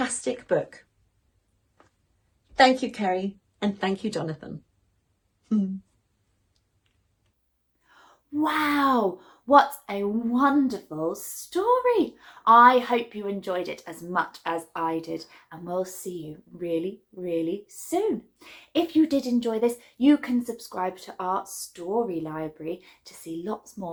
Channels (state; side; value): identical; both; correlation 1.00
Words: book. Thank you, Karrie, and thank you, Jonathan. Wow, what a wonderful story. I hope you enjoyed it as much as I did, and we'll see you really, really soon. If you did enjoy this, you can subscribe to our story library to see lots